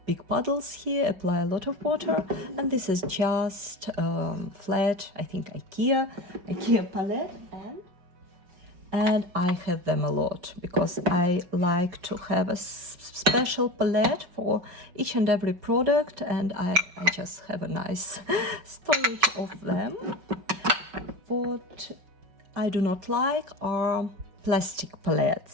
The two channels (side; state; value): left; late; 5.7 ms